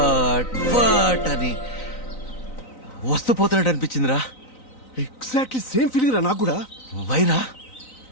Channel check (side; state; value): right; late; 3.9 ms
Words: అని వస్తూ పోతున్నట్టు అనిపించిందిరా. ఎగ్జాక్ట్లీ సేమ్ ఫీలింగ్ రా నాకు కూడా. వైరా